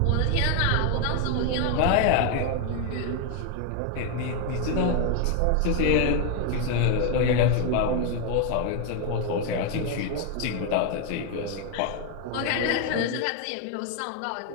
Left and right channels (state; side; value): different; both; correlation 0.01